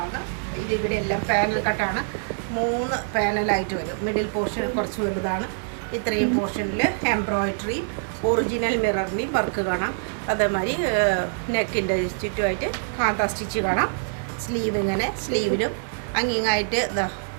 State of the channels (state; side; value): silent; left; digital silence